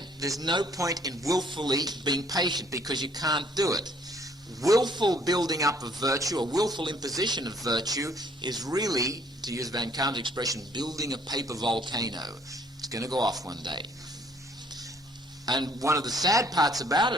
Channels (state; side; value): normal; both; correlation 0.62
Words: there's no point in willfully being patient, because you can't do it. Willful building up of virtue, or willful imposition of virtue, is really, to use Van Kaan's expression, building a paper volcano. It's going to go off one day. And one of the sad parts about